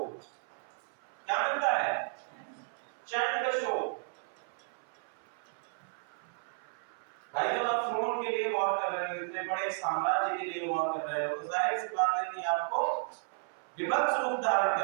क्या मिलता है? चंद्रशोक। भाई जब आप थ्रोन के लिए वॉर कर रहे हो, इतने बड़े साम्राज्य के लिए वॉर कर रहे हो, तो जाहिर सी बात है कि आपको विभत्स रूप धारण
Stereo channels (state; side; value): silent; left; 55 dB below the other